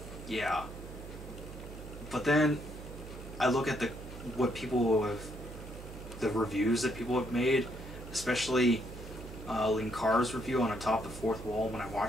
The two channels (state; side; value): noise; right; hum, 12 dB below the sound